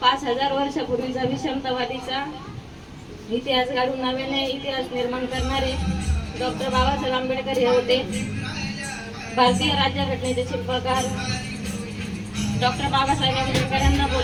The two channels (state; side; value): identical; both; correlation 1.00